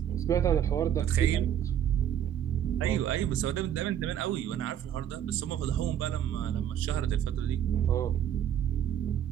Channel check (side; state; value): left; quieter; 10.0 dB